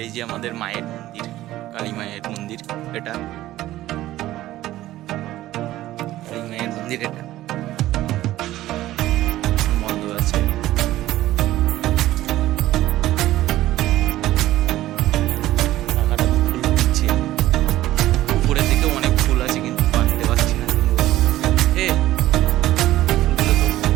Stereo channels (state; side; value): quieter; left; 15.2 dB